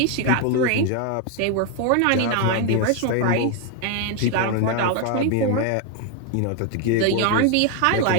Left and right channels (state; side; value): different; both; correlation 0.01